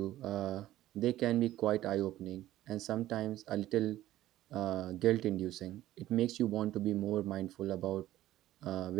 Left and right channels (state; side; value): quieter; left; 14.3 dB